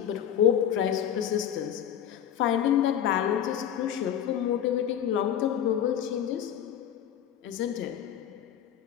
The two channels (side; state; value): right; quieter; 9.7 dB